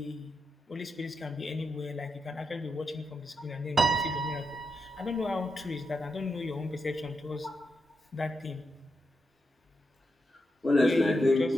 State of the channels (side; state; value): both; normal; correlation 0.85